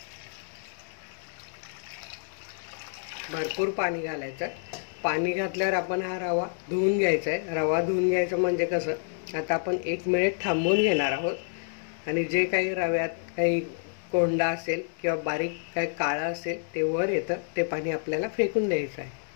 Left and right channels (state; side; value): silent; right; digital silence